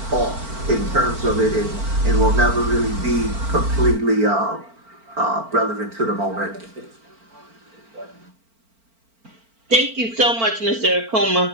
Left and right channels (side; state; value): left; late; 4.4 ms